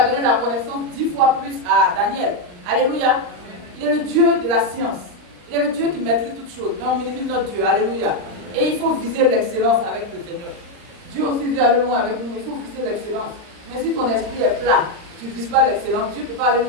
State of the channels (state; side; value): late; left; 39 ms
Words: donné la connaissance 10 fois plus à Daniel. Alléluia. Il est le Dieu de la science. Il est le Dieu qui maîtrise toutes choses. Mais on minimise notre Dieu. Alléluia. Et il faut viser l'excellence avec le Seigneur. Dieu aussi veut aller loin avec nous. Il faut viser l'excellence. Mais si ton esprit est plat, tu ne vises pas l'excellence, Dieu ne peut pas aller